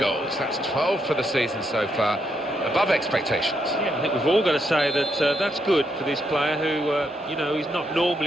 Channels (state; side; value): normal; both; correlation 0.78